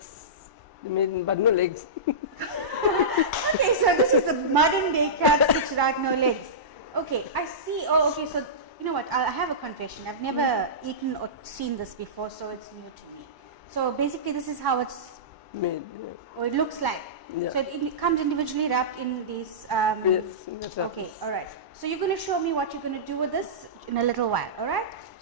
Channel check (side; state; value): left; late; 1.0 ms